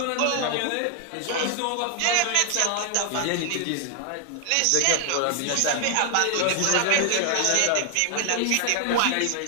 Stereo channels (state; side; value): different; both; correlation 0.00